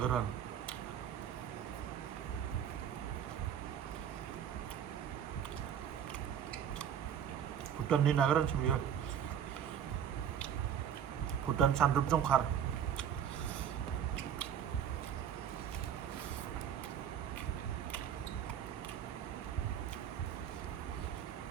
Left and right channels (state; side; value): quieter; left; 8.9 dB